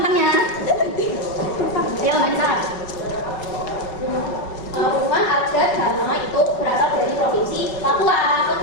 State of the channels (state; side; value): late; right; 5.3 ms